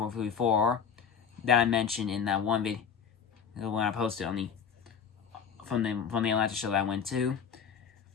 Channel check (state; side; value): quieter; right; 7.0 dB